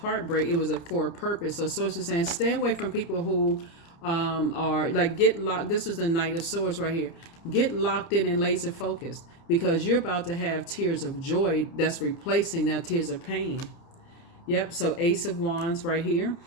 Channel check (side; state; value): right; late; 30 ms